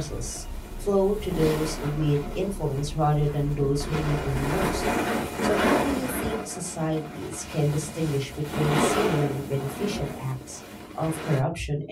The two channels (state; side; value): identical; both; correlation 1.00